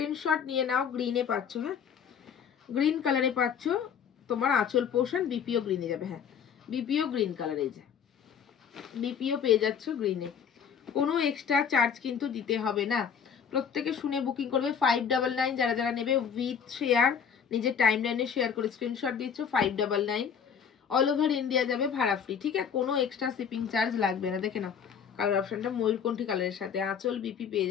নিয়ে নাও। গ্রিনে পাচ্ছ, হ্যাঁ গ্রিন কালারে পাচ্ছ তোমার আঁচল পোর্শন, বিপিও গ্রিনে যাবে। হ্যাঁ বিপিও গ্রিন কালার, এই যে বিপিও পেয়ে যাচ্ছ গ্রিনে। কোনো এক্সট্রা চার্জ কিন্তু দিতে হবে না, প্রত্যেকে শুনে বুকিং করবে। 599 যারা যারা নেবে উইথ শেয়ার, নিজের টাইম লাইনে শেয়ার করে স্ক্রিনশট দিচ্ছ 599। অল ওভার ইন্ডিয়া যাবে ভাড়া ফ্রি, ঠিক আছে। কোনো এক্সট্রা শিপিং চার্জ লাগবে না। দেখে নাও কালার অপশনটা ময়ূরকণ্ঠী কালারের সাথে আঁচল বিপি পেয়ে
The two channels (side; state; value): right; quieter; 7.4 dB